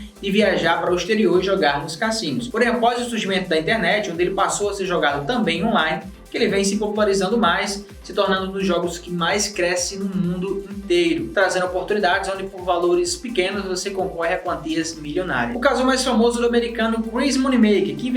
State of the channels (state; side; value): identical; both; correlation 1.00